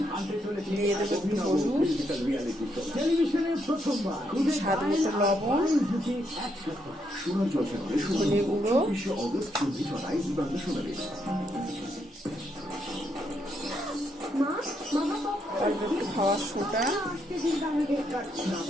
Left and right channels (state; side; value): normal; both; correlation 0.77